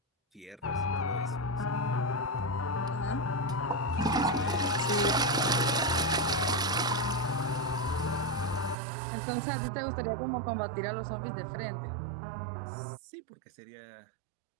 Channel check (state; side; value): drops out; left; at 8.8 s